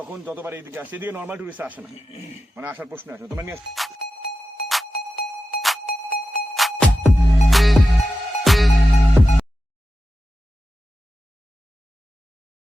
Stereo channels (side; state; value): both; normal; correlation 0.92